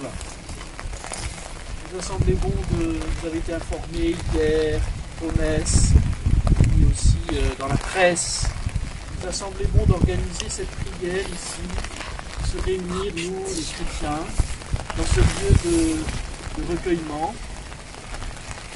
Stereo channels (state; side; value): identical; both; correlation 1.00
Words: Il nous a semblé bon vous avez été informés hier aux messes, puis aussi dans la presse. Il nous a semblé bon d'organiser cette prière ici, de se réunir, nous, les chrétiens, dans ce lieu de recueillement,